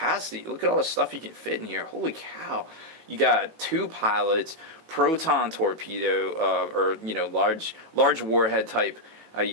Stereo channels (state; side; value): late; left; 18 ms